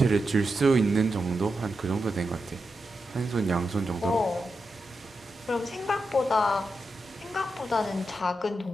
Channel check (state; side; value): normal; both; correlation 0.88